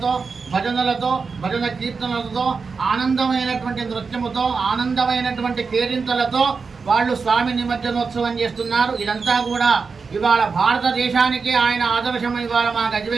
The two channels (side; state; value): left; quieter; 4.9 dB